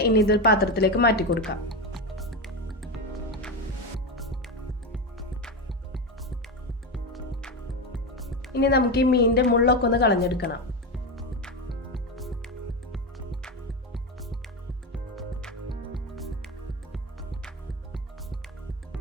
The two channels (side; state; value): both; normal; correlation 0.16